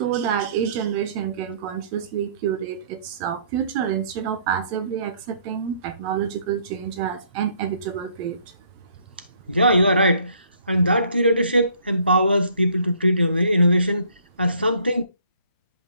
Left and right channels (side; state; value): both; inverted; correlation -0.62